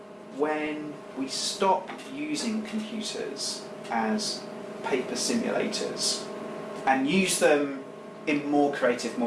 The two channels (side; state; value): both; identical; correlation 1.00